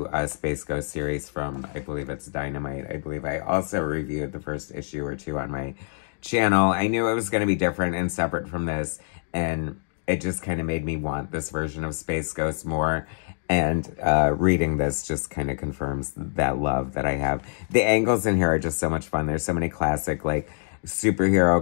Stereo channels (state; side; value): silent; right; digital silence